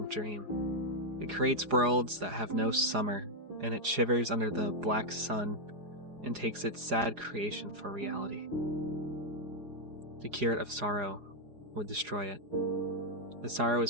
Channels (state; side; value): late; left; 4.9 ms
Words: dream. It creates worlds that have no summer, and it shivers under the black sun and takes its sad creation for reality. The curate of sorrow would destroy it. The sorrow